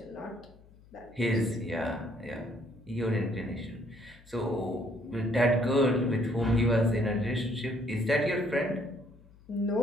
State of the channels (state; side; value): noise; left; hum, 25 dB below the sound